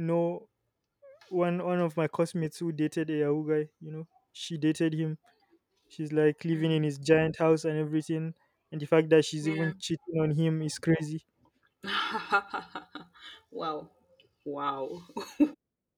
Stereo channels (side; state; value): both; identical; correlation 1.00